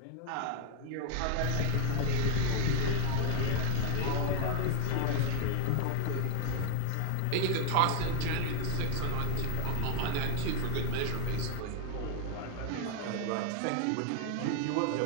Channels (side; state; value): both; different; correlation 0.00